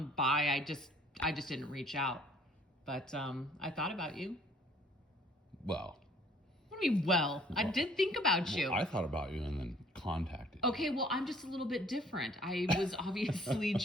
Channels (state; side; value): normal; both; correlation 0.58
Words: by. I just didn't reach out. But I thought about you. Well. What do you mean, well? I did think about you. I thought about you and then contacted you. Okay, well, I'm just a little bit different. I was obviously